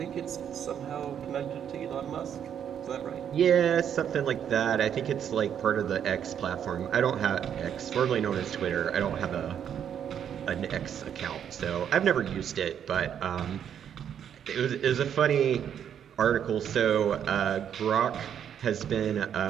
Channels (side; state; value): left; quieter; 8.9 dB